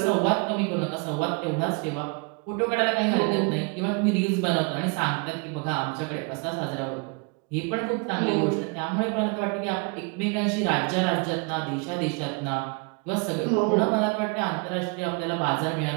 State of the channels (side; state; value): left; quieter; 31.9 dB